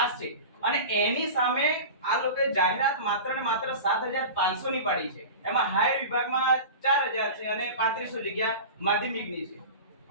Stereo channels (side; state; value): both; inverted; correlation -0.31